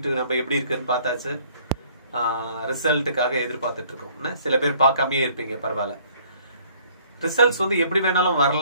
நம்ம எப்படி இருக்குன்னு பார்த்தாச்சு, ரிசல்ட்டுக்காக எதிர்பார்த்துட்டு இருக்கோம். சில பேர் பார்க்காமே இருப்பீங்க, பரவாயில்ல. ரிசல்ட்ஸ் வந்து எப்படி வேணாலும்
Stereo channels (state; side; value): inverted; both; correlation -0.58